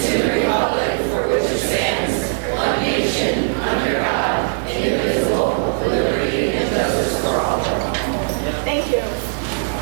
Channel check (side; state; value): left; silent; digital silence